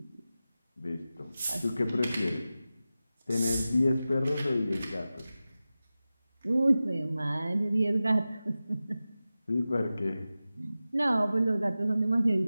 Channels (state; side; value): inverted; both; correlation -0.95